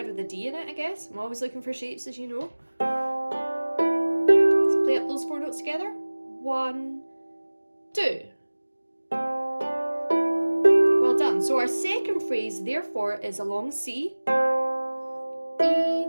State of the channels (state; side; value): inverted; both; correlation -1.00